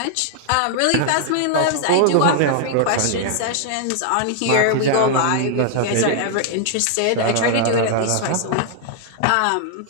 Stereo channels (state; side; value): different; both; correlation -0.01